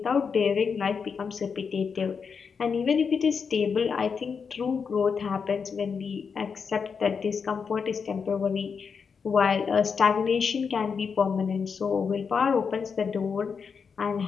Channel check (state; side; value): quieter; right; 5.9 dB